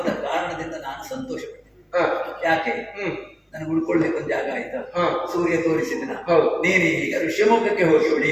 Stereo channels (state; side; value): identical; both; correlation 1.00